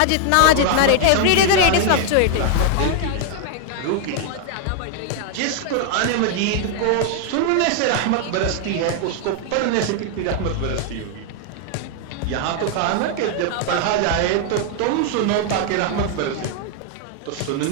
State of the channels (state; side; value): different; both; correlation 0.00